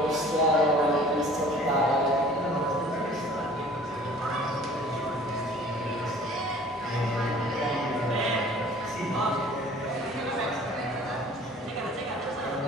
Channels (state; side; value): normal; both; correlation 0.49